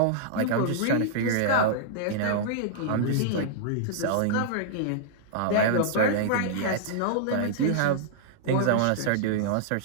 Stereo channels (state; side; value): different; both; correlation -0.02